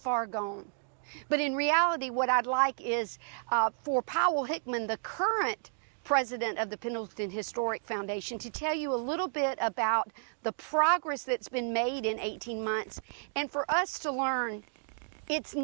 gone. But in reality, what I'd like is for Powell Hickman, the current president of the Pendleton Historic Foundation, to tell you a little bit about the progress that's been made in 18 months, and for us to learn it's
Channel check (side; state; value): left; silent; digital silence